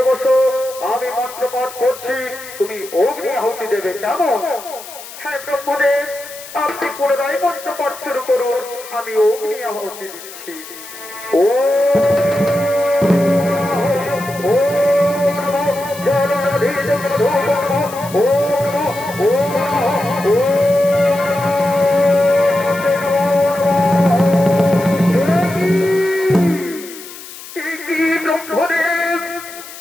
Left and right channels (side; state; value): left; noise; hiss, 15 dB below the sound